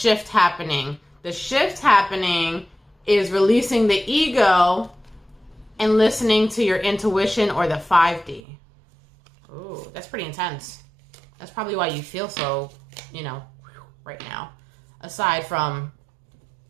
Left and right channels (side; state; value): left; drops out; at 8.4 s